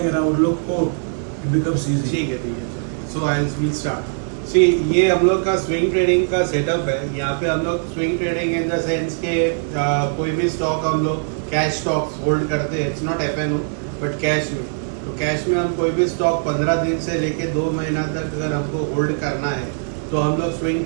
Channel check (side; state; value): left; silent; 63 dB below the other